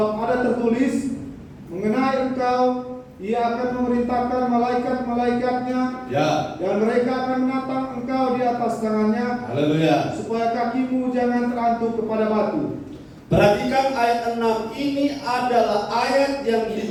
ada tertulis mengenai engkau, Ia akan memerintahkan malaikat-malaikatnya, dan mereka akan menatang engkau di atas tangannya, Haleluya. supaya kakimu jangan terantuk kepada batu. Perhatikan ayat 6 ini adalah ayat yang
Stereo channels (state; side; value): identical; both; correlation 1.00